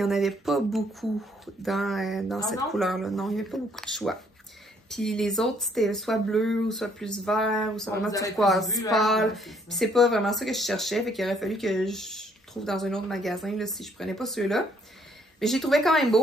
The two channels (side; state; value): both; normal; correlation 0.66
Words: en avait pas beaucoup dans cette couleur-là. Non, il n'y avait pas beaucoup de choix. Puis, les autres, c'était soit bleu, ou soit plus vert, ou soit vraiment turquoise pâle. Puis, c'est pas vraiment ça que je cherchais. Fait qu'il aurait fallu que je trouve dans un autre magasin, là, si je prenais pas ceux-là. Mais j'ai trouvé quand même